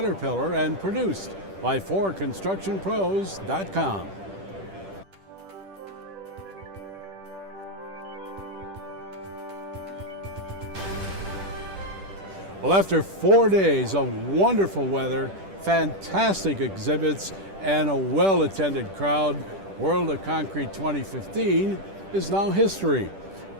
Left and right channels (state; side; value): late; left; 10 ms